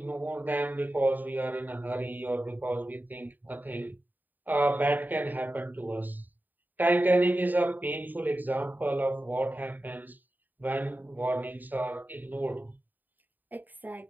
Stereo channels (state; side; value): late; left; 0.088 ms